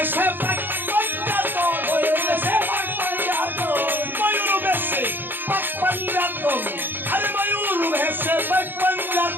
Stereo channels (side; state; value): left; late; 0.095 ms